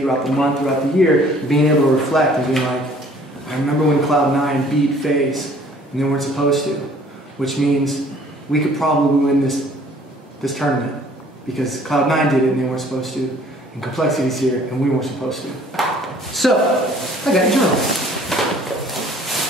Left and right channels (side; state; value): both; normal; correlation 0.55